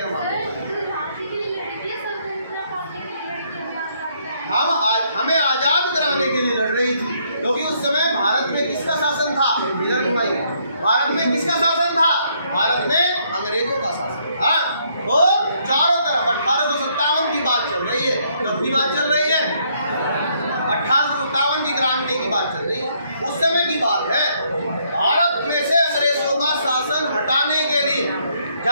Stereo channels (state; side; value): inverted; both; correlation -0.70